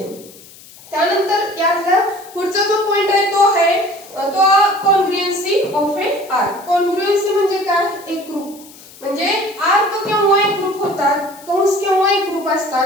त्यानंतर यातला पुढचा जो पॉइंट आहे तो आहे तो कॉन्ग्रुएन्सी ऑफ ए आर्क. कॉन्ग्रुएन्सी म्हणजे काय, एक ग्रुप, म्हणजे आर्क केव्हा एक ग्रुप होतात, कंस केव्हा एक ग्रुप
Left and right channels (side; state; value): left; noise; hiss, 21 dB below the sound